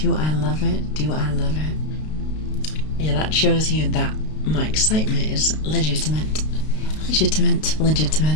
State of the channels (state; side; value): late; right; 32 ms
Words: I love it? Do I love it? Yeah, that shows you that my excitement is legitimate. Legitimate.